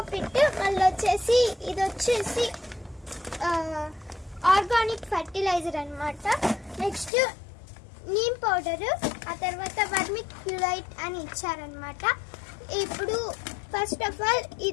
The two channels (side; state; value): right; drops out; at 7.1 s